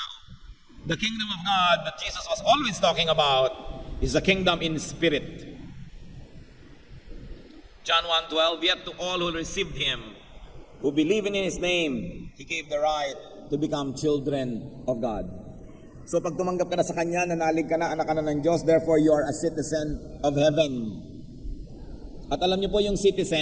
The kingdom of God that Jesus was always talking about is a kingdom in spirit. John 1:12, "Yet to all who received Him, who believe in His name, He gave the right to become children of God." So pag tumanggap ka na sa Kanya, nanalig ka na, anak ka na ng Diyos, therefore you are a citizen of heaven. At alam niyo po yung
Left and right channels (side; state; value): both; identical; correlation 1.00